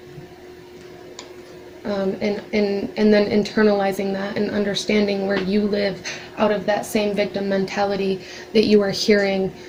And then internalizing that and understanding where you live out of that same victim mentality that you are hearing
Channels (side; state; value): both; identical; correlation 1.00